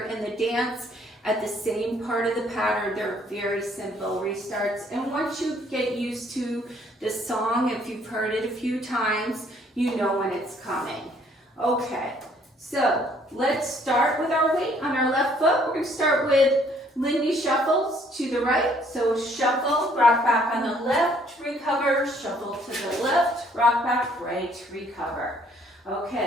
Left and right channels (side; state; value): both; normal; correlation 0.63